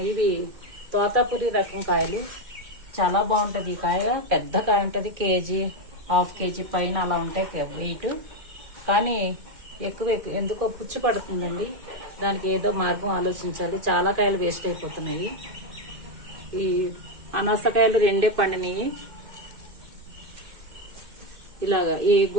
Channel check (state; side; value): late; left; 2.1 ms